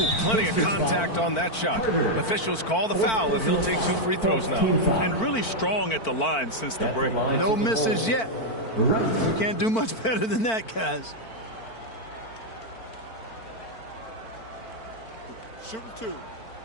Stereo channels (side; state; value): right; late; 4.5 ms